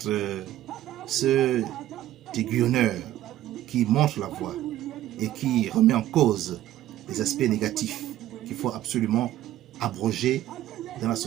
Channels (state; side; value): quieter; left; 13.4 dB